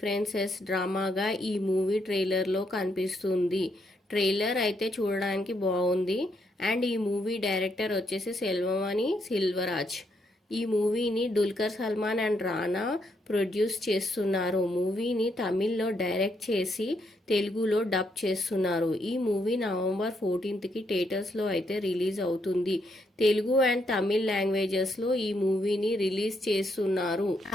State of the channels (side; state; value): both; normal; correlation 0.76